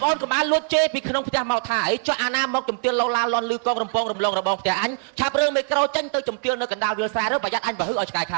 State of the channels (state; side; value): silent; left; 59 dB below the other